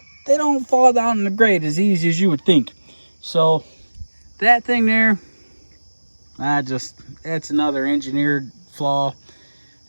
don't fall down in the grate as easy as you would think. So that thing there, it's another engineered flaw.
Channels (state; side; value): inverted; both; correlation -1.00